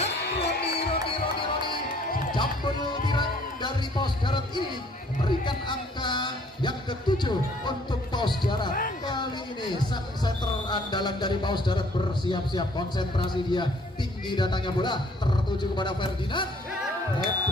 Roni. Jambul tirang dari Paus Darat ini memberikan angka yang ke-7 untuk Paus Darat. Kali ini sang center andalan dari Paus Darat bersiap-siap, konsentrasi dia, tinggi datangnya bola, tertuju kepada Ferdinand.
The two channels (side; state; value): both; normal; correlation 0.60